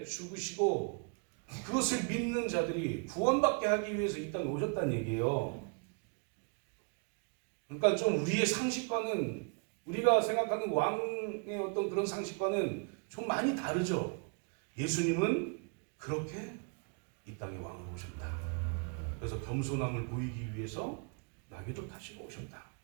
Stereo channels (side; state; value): left; quieter; 38.9 dB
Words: 죽으시고 그것을 믿는 자들이 구원받게 하기 위해서 이 땅에 오셨다는 얘기예요. 그러니까 좀 우리의 상식과는 우리가 생각하는 왕의 어떤 그런 상식과는 좀 많이 다르죠. 예수님은 그렇게 이 땅에 왕으로 오셨다. 그래서 겸손함을 보이기 위해서 나귀도 타시고 오셨다.